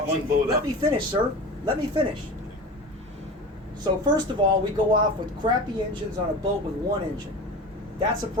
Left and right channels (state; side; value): normal; both; correlation 0.32